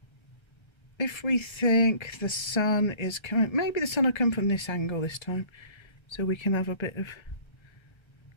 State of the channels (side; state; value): right; late; 1.3 ms